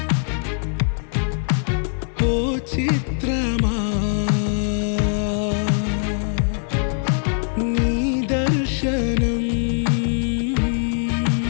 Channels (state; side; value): silent; right; digital silence